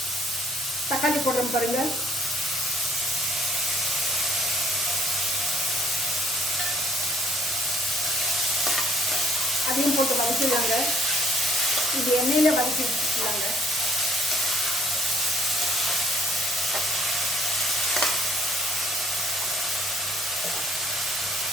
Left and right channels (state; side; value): normal; both; correlation 0.61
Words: தக்காளி போடுறோம் பாருங்கள். அதையும் போட்டு வதக்கிடலாங்க. இது எண்ணெயில் வதக்கி வச்சுக்கலாங்க.